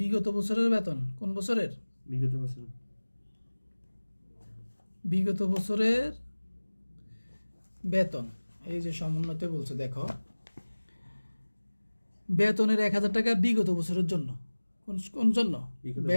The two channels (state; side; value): inverted; both; correlation -1.00